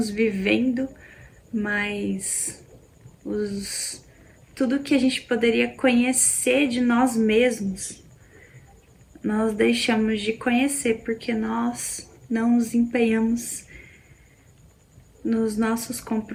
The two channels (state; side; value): identical; both; correlation 1.00